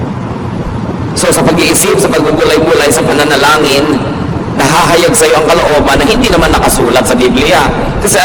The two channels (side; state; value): both; identical; correlation 1.00